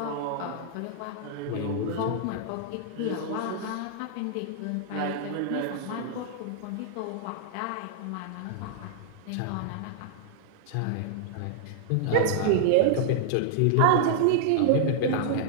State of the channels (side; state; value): both; different; correlation -0.01